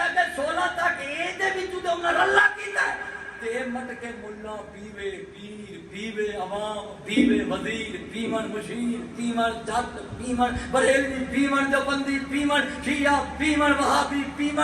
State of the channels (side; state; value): both; identical; correlation 1.00